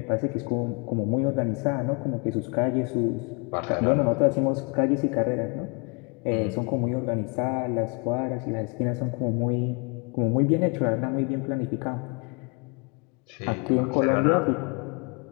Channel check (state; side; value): quieter; right; 33.8 dB